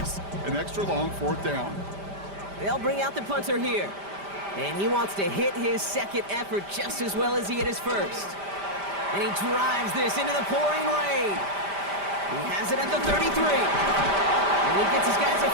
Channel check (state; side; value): late; left; 5.0 ms